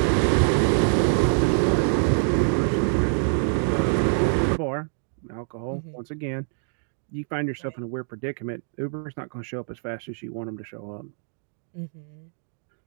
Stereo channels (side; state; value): left; silent; 61 dB below the other